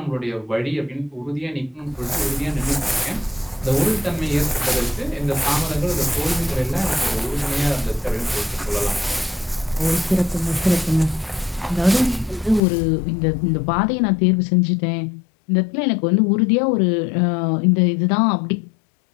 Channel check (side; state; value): right; drops out; at 12.6 s